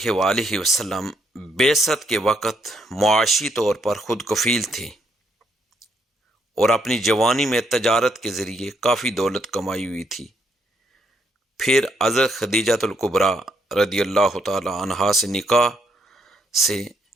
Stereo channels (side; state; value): both; normal; correlation 0.74